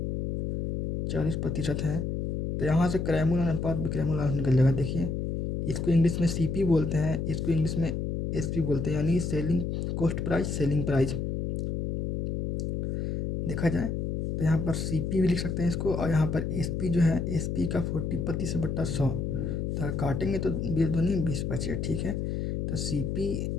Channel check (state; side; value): noise; left; hum, 2 dB below the sound